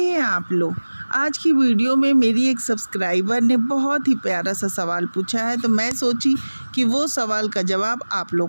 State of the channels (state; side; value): inverted; both; correlation -1.00